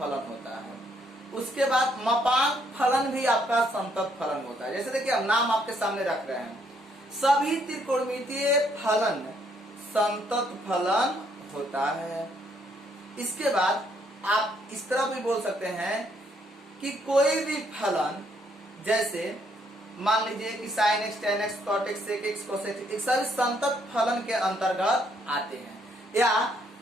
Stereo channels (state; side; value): normal; both; correlation 0.70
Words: होता है। उसके बाद मापांक फलन भी आपका संतत फलन होता है। जैसे देखिए हम नाम आपके सामने रख रहे हैं, सभी त्रिकोणमितीय फलन संतत फलन होता है। इसके बाद आप इस तरह भी बोल सकते हैं कि कोई भी फलन, जैसे मान लीजिए कि sin x, tan x, cot x, sec x, cos x, सभी संतत फलन के अंतर्गत आते हैं। या